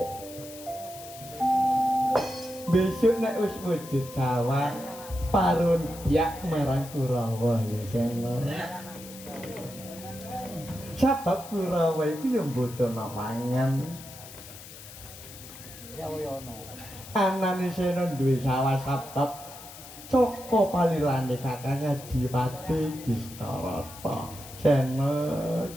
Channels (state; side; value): noise; left; hiss, 16 dB below the sound